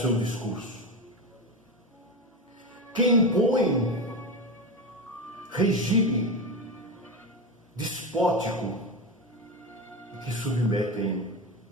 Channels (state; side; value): normal; both; correlation 0.19